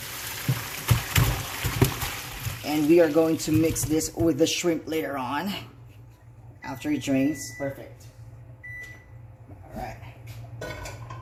And we are going to mix this with the shrimp later on. After it drains. Perfect. Alright.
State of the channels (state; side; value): identical; both; correlation 1.00